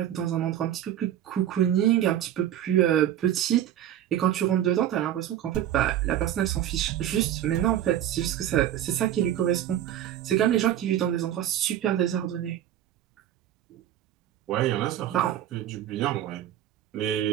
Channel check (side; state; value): left; quieter; 11.4 dB